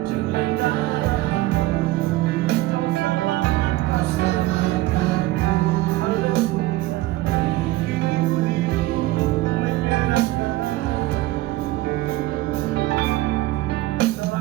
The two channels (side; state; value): left; quieter; 17.6 dB